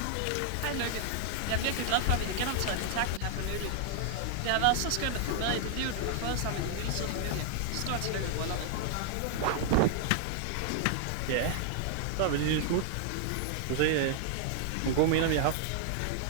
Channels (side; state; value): both; different; correlation 0.00